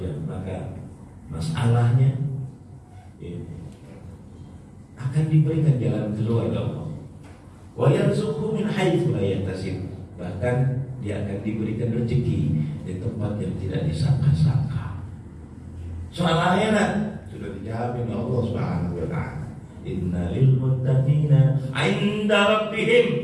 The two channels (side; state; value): both; identical; correlation 1.00